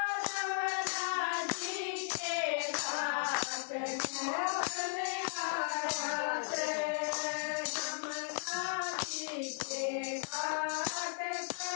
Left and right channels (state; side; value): silent; right; 54 dB below the other